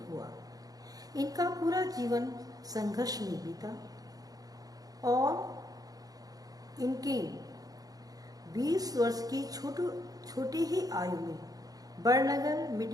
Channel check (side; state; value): left; late; 0.18 ms